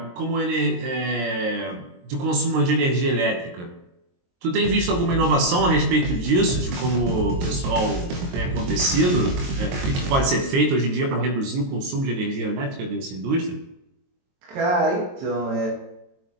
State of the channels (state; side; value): late; left; 23 ms